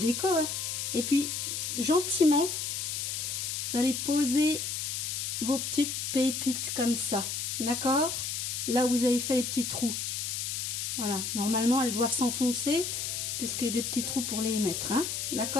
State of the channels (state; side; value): noise; left; hiss, 3 dB below the sound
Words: hein. Et puis, gentiment, vous allez poser vos petites pépites comme ça, d'accord? Là où vous avez fait les petits trous. Voilà, normalement, elles doivent s'enfoncer, parce qu'il y a des petits trous pour les mettre, hein,